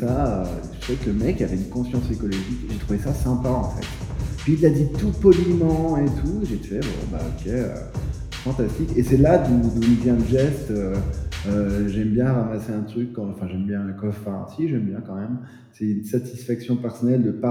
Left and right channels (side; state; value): both; identical; correlation 1.00